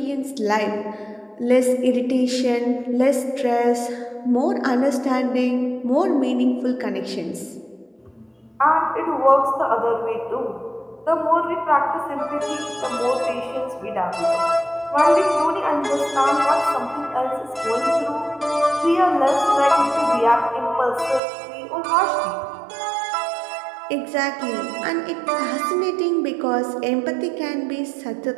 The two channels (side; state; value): left; drops out; at 21.2 s